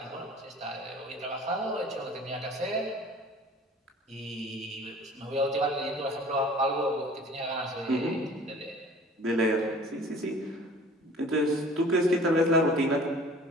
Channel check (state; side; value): normal; both; correlation 0.47